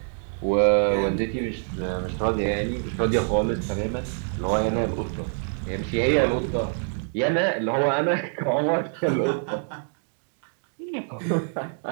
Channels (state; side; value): silent; left; digital silence